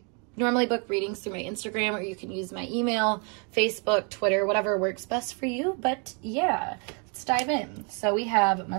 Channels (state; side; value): quieter; left; 36.5 dB